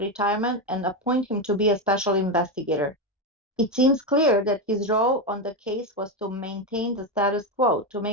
and appoint him to be a special investigator. It seems clear that his role on the case was to maintain the status quo, to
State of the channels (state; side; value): normal; both; correlation 0.11